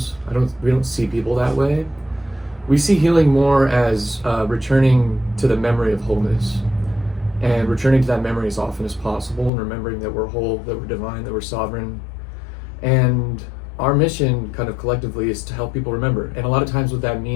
We don't see people that way. We see healing more as returning to the memory of wholeness. And returning to that memory as often as possible, and remembering that we're whole, that we're divine, that we're sovereign. And our mission kind of collectively is to help people remember. And a lot of times what that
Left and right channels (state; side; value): drops out; right; at 9.5 s